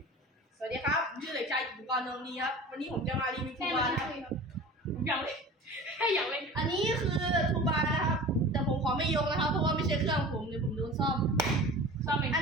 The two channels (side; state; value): both; normal; correlation 0.38